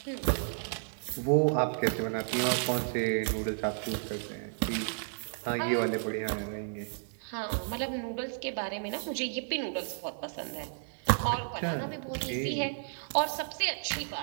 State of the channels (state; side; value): silent; left; 56 dB below the other